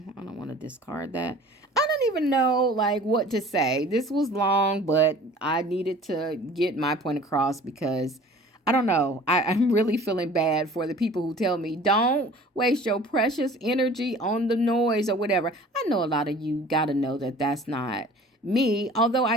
I don't want to discard that. I don't even know, like, what to say. This was long, but I needed to get my point across because I don't know. I'm really feeling bad for the people who tell me, don't waste your precious energy on the noise or whatever. I know a lot of you got to know that that's not me, although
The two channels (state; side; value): normal; both; correlation 0.46